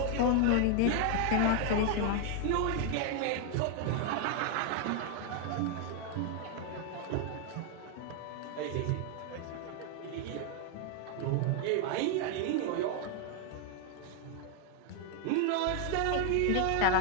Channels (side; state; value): both; different; correlation 0.00